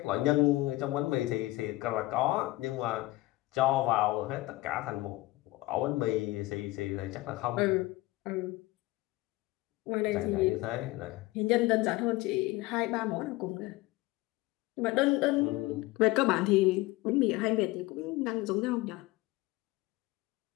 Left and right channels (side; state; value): right; quieter; 19.2 dB